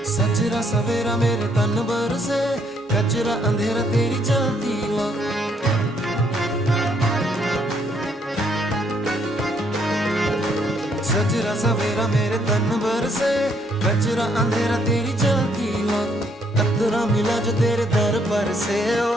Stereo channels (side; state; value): both; normal; correlation 0.69